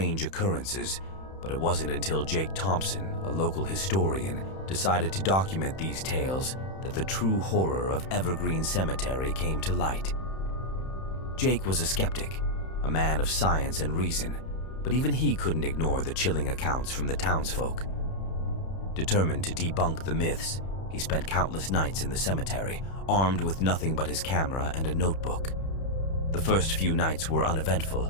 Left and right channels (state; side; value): late; right; 31 ms